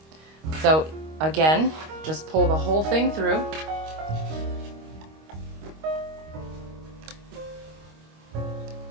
So again, just pull the whole thing through.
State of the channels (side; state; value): left; late; 25 ms